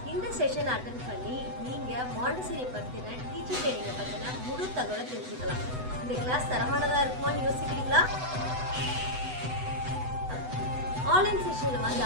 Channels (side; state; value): left; late; 8.0 ms